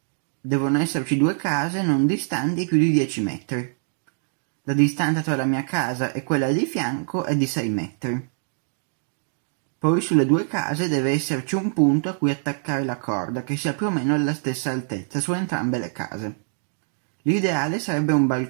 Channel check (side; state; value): left; silent; digital silence